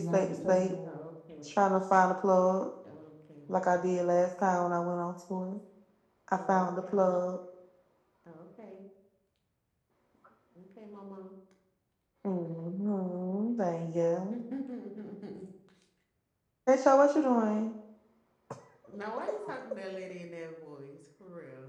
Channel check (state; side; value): identical; both; correlation 1.00